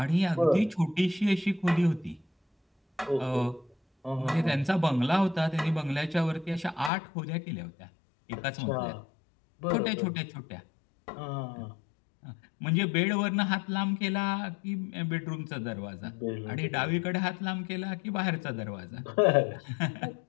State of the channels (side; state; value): right; drops out; at 6.9 s